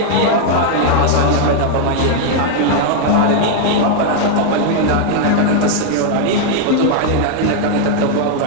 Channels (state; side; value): different; both; correlation 0.00